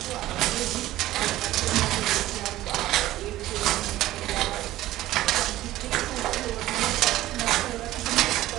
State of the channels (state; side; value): quieter; left; 15.3 dB